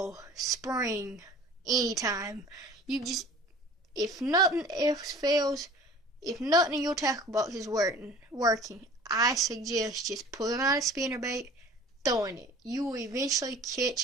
spring, anytime. If nothing else fails, if nothing in your tackle box is working, I suggest just pulling out a spinnerbait, throwing it. You will eventually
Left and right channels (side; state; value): both; normal; correlation 0.45